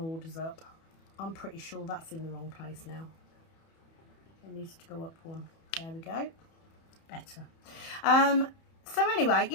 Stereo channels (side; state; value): right; late; 31 ms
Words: up. I'm pretty sure that's in the wrong place now. It needs to go up one. There we go. Better. So anyway,